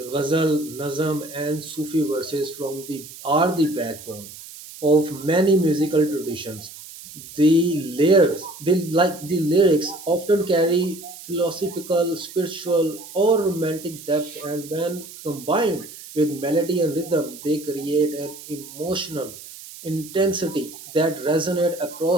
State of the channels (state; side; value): noise; right; hiss, 16 dB below the sound